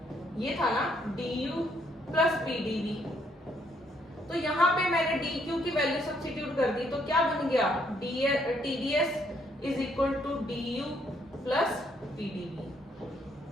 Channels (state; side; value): normal; both; correlation 0.70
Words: ये था ना, DU + PdV। तो यहाँ पे मैंने DQ की वैल्यू सब्स्टिट्यूट कर दी, तो क्या बन गया, TDS = DU + PdV,